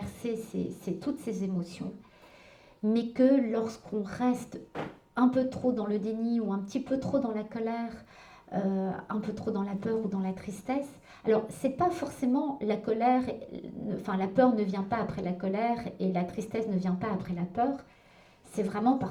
toutes ces émotions, mais que lorsqu'on reste un peu trop dans le déni ou un petit peu trop dans la colère, un peu trop dans la peur ou dans la tristesse. Alors, c'est pas forcément la colère, enfin la peur ne vient pas après la colère et la tristesse ne vient pas après la peur. C'est vraiment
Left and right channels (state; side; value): identical; both; correlation 1.00